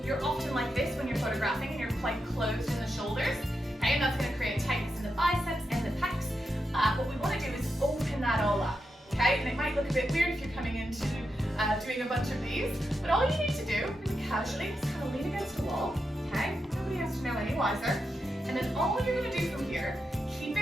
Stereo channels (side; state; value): both; normal; correlation 0.87